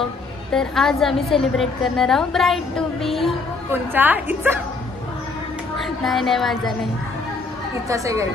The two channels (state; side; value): quieter; right; 3.9 dB